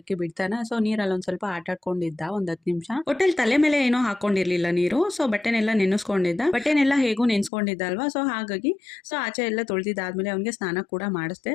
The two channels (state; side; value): drops out; right; at 7.5 s